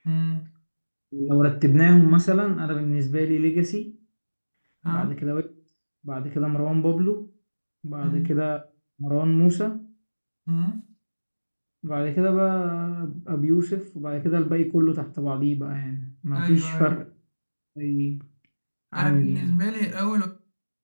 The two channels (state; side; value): inverted; both; correlation -1.00